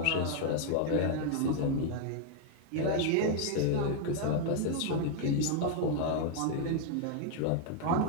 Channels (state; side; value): different; both; correlation 0.00